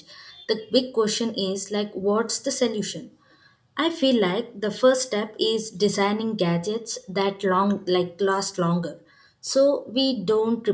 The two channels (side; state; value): both; identical; correlation 1.00